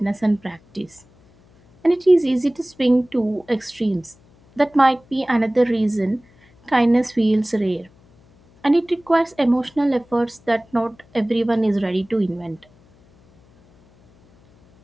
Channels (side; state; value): left; noise; hum, 30 dB below the sound